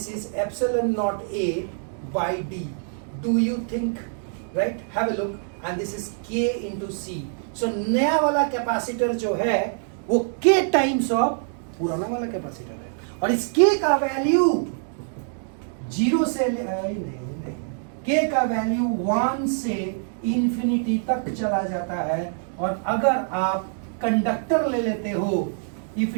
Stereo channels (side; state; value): left; silent; digital silence